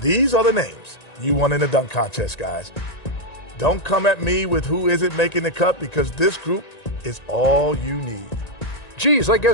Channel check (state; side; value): late; right; 1.9 ms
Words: these are the names you want in the dunk contest, guys. Don't come at me with who isn't making the cut, because this group is all you need. Geez, I